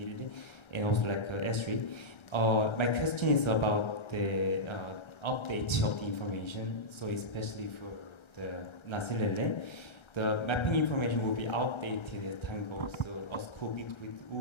and also Esri. My question is about the update of the information. So especially for the Nasilele, the mapping information will be outdated as time goes. So a school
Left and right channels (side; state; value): right; late; 1.3 ms